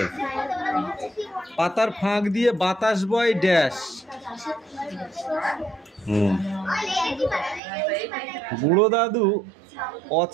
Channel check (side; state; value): left; drops out; at 7.6 s